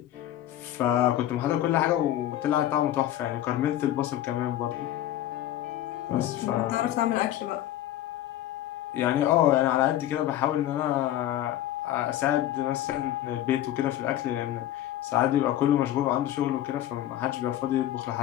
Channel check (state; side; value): quieter; right; 12.9 dB